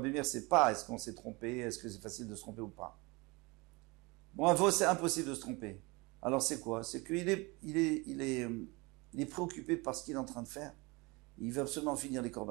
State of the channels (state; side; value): quieter; left; 25.8 dB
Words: Meir, c'est pas est-ce qu'on s'est trompé, est-ce que c'est facile de se tromper ou pas. Bon, un veau, c'est impossible de se tromper. Alors c'est quoi? C'est qu'il est préoccupé par ce qu'il est en train de faire. Il veut absolument finir les